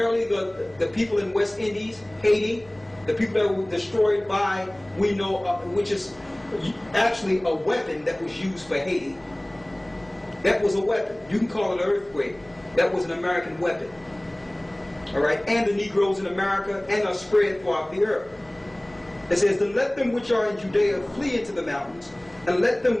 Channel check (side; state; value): left; noise; hum, 27 dB below the sound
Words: the people in West Indies, Haiti, the people that were destroyed by, we know, which is actually a weapon that was used for Haiti. That was a weapon. You can call it an earthquake. That was an American weapon. All right, and the Negroes in America, and are spread throughout the earth. It says, then let them which are in Judea flee into the mountains, and let them